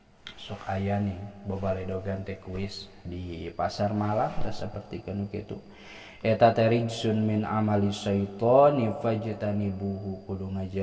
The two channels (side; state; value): both; identical; correlation 1.00